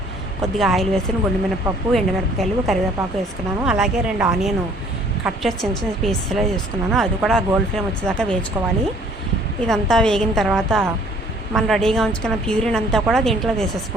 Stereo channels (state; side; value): normal; both; correlation 0.57